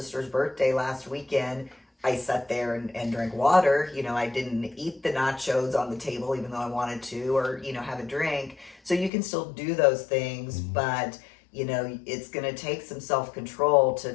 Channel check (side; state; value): right; drops out; at 9.1 s